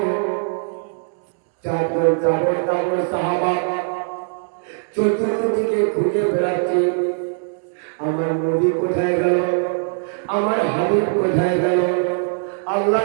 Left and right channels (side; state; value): left; silent; 65 dB below the other